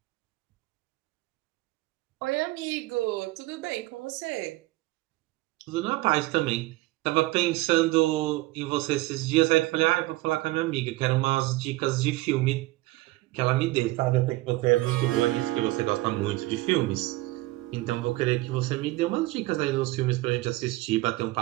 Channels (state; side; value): quieter; left; 19.8 dB